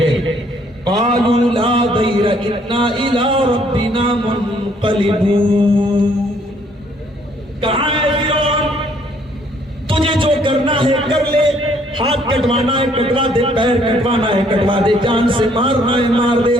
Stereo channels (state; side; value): normal; both; correlation 0.64